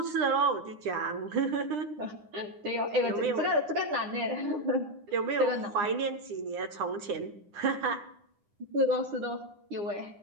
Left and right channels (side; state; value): left; late; 9.8 ms